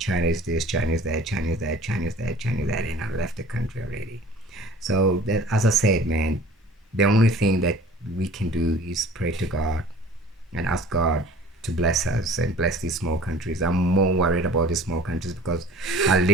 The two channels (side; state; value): both; normal; correlation 0.47